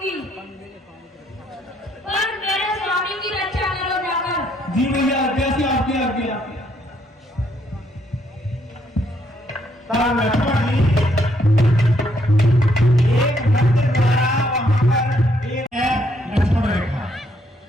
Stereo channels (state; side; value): normal; both; correlation 0.72